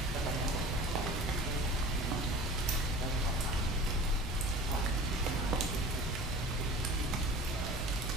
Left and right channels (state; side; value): normal; both; correlation 0.39